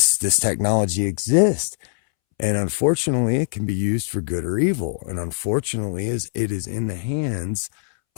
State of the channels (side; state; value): right; silent; 64 dB below the other